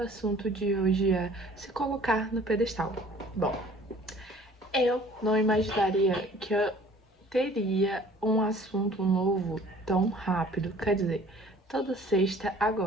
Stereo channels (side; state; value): both; normal; correlation 0.51